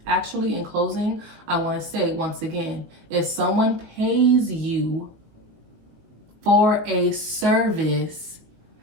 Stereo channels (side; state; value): left; late; 19 ms